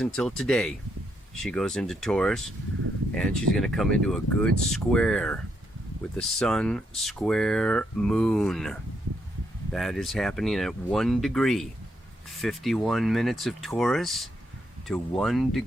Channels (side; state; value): both; normal; correlation 0.78